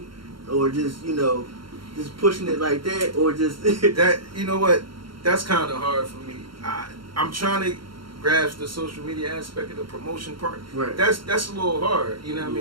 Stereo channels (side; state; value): left; late; 0.73 ms